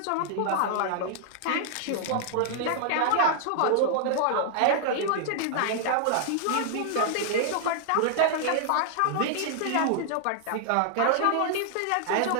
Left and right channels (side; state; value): both; different; correlation -0.01